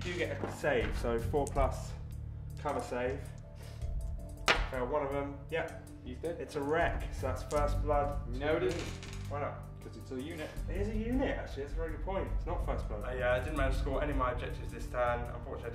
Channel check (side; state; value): both; identical; correlation 1.00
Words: get a save, so 4+ cover save. Fail one of them. Yep, he's dead. It's a wreck, so that's first blood. No, it isn't. Why not? Because it's a unit. It is a unit, actually. That's a very good point. It's not first blood. Yeah, I didn't manage to score any of my objectives this turn.